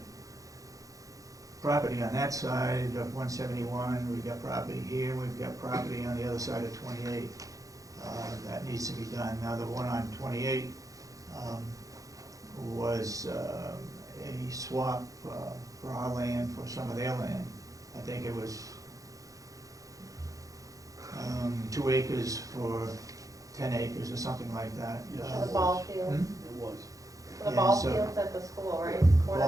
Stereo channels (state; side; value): late; left; 0.16 ms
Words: property on that side of 171, we've got property here, we've got property on the other side of 28. That needs to be done. Now, the one on 28 was a swap for our land for some of their land. I think it was 2 acres for 10 acres or something like that. Yes. The ball field, Hmm? It was. the Yeah, ball so- fields at the school, right? Ball